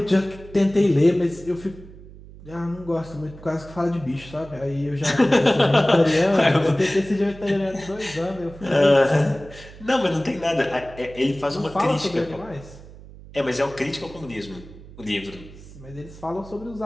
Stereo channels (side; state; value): right; noise; hum, 18 dB below the sound